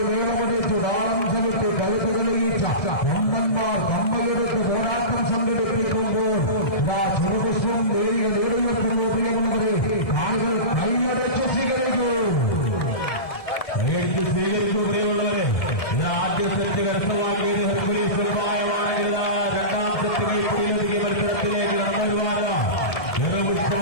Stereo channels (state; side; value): late; right; 1.7 ms